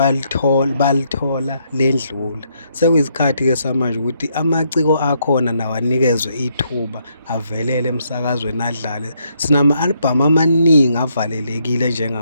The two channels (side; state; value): both; inverted; correlation -0.74